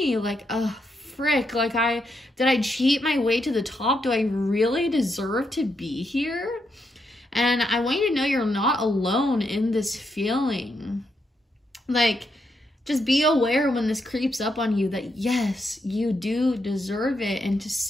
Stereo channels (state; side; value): normal; both; correlation 0.81